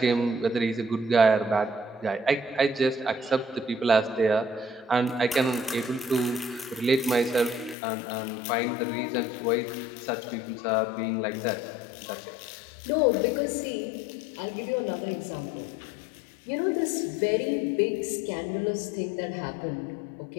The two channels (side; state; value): right; drops out; at 7.8 s